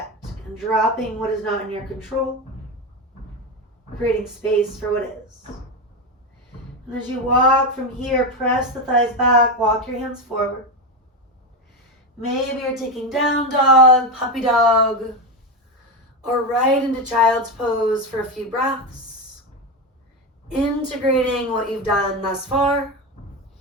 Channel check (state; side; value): normal; both; correlation 0.15